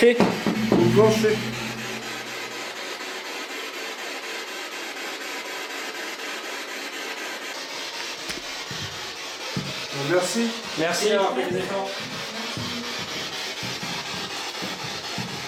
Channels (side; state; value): both; identical; correlation 1.00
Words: Ou le plancher? Merci. Merci d'avoir fait des efforts.